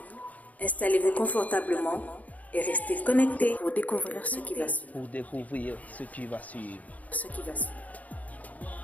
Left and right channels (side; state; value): right; late; 0.074 ms